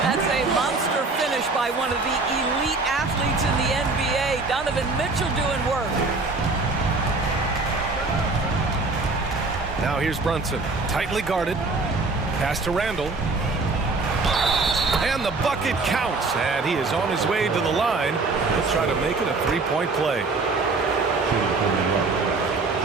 That's a monster finish by one of the elite athletes in the NBA. Donovan Mitchell doing work. Now here's Brunson. Tightly guarded. Pass to Randall. And the bucket counts. And he is on his way to the line. He'll try to make it a three-point play.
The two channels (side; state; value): left; quieter; 3.7 dB